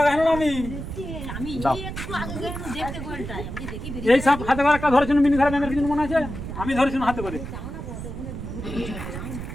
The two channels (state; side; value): noise; right; rumble, 8 dB below the sound